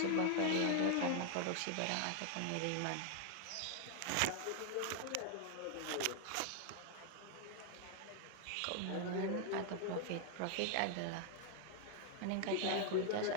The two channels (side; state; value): both; different; correlation 0.00